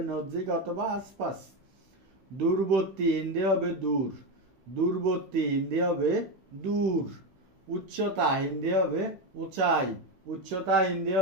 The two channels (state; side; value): late; left; 16 ms